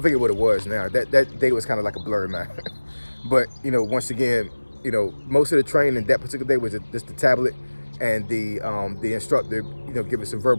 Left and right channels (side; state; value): both; inverted; correlation -1.00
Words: what it was now. That day was kind of like a blur, man. But once again, most of the training that particular day was just the tablet and the instructor, give us some